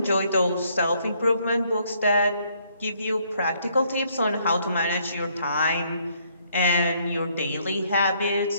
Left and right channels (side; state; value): both; inverted; correlation -0.68